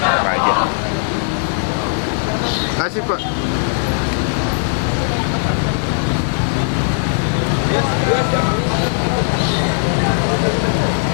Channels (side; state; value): right; silent; 65 dB below the other